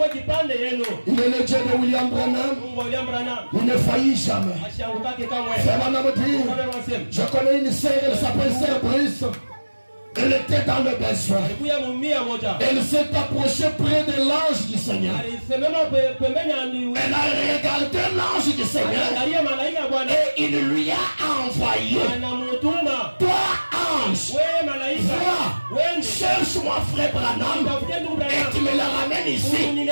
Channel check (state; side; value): inverted; both; correlation -1.00